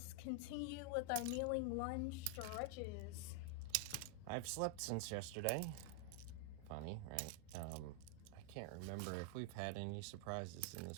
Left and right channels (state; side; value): different; both; correlation 0.00